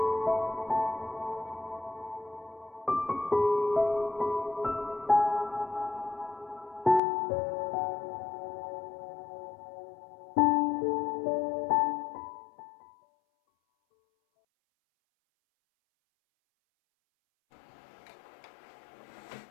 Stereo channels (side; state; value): right; drops out; at 7.0 s